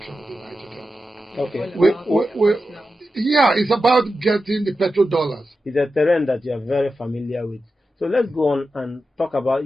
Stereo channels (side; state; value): both; normal; correlation 0.91